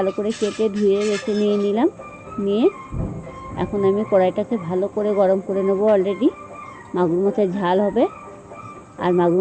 করে কেটে ধুয়ে বেছে নিয়ে নিলাম। নিয়ে এখন আমি কড়াইটাকে ভালো করে গরম করে নেবো। অলরেডি মাগুর মাছের ঝাল হবে, আর মাগুর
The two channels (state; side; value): identical; both; correlation 1.00